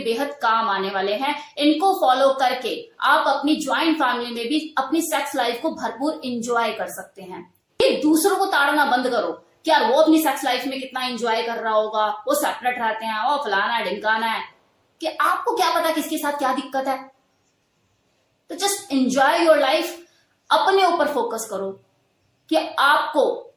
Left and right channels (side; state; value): both; identical; correlation 1.00